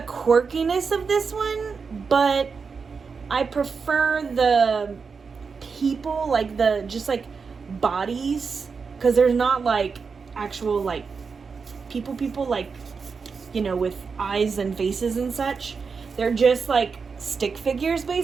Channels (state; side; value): quieter; left; 5.3 dB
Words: quirkiness of this one, but I prefer the people, like the just like bodies, because there's not like actual like people like, you know, with eyes and faces and such. They're just like stick figures